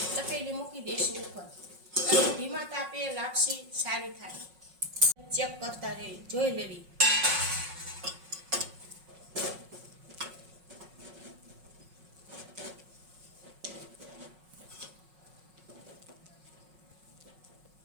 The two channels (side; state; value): left; late; 5.5 ms